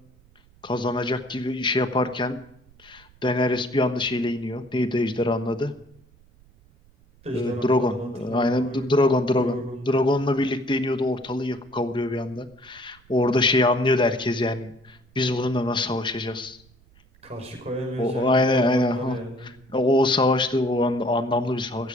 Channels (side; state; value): right; noise; rumble, 29 dB below the sound